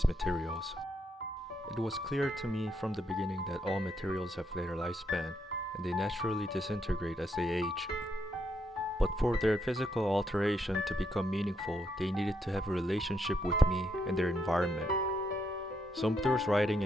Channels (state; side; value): normal; both; correlation 0.77